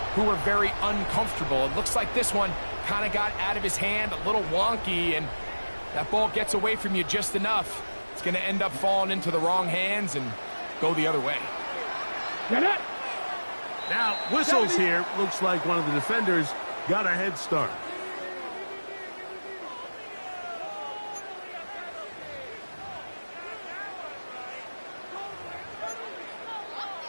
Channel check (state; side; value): inverted; both; correlation -1.00